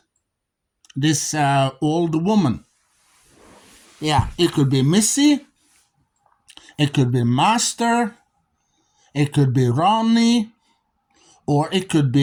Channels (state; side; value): identical; both; correlation 1.00